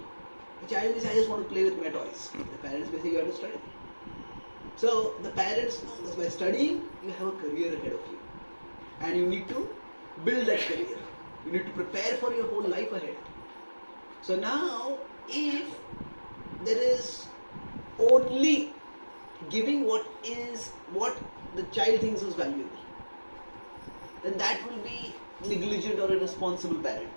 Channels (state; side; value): inverted; both; correlation -1.00